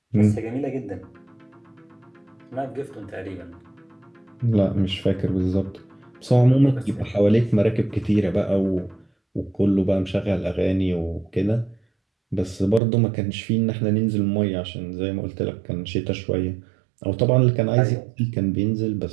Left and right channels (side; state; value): left; drops out; at 12.8 s